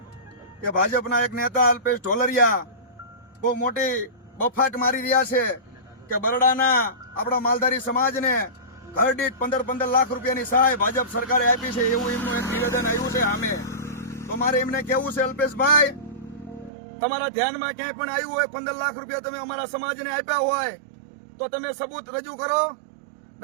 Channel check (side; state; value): left; drops out; at 16.7 s